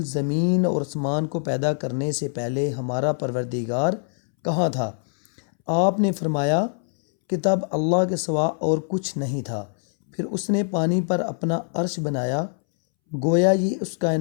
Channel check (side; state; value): right; silent; 63 dB below the other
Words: زمین اور آسمان کو پیدا کرنے سے پہلے ہمارا پروردگار کہاں تھا؟ آپ نے فرمایا کہ تب اللہ کے سوا اور کچھ نہیں تھا، پھر اس نے پانی پر اپنا عرش بنایا، گویا یہ اس